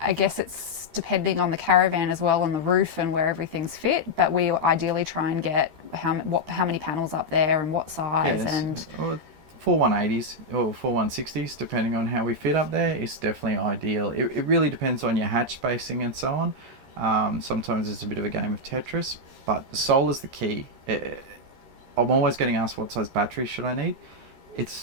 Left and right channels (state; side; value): late; left; 13 ms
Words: guess it's depending on the caravan as well, on the roof and where everything's fit, but we ideally try and get how many panels up there and what size. Yes. And well, 4 180s or 4 160s, depending on how we fit up there, is definitely ideal. It really depends on your hatch spacing and so on. Sometimes it's a bit of a game of Tetris, but solar's the key. I'm always getting asked what size battery should I need.